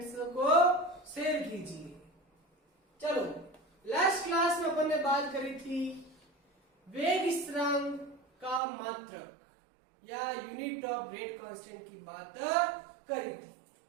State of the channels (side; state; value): left; drops out; at 8.6 s